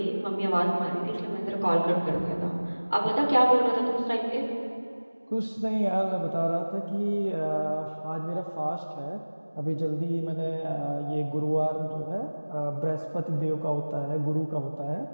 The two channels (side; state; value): both; inverted; correlation -1.00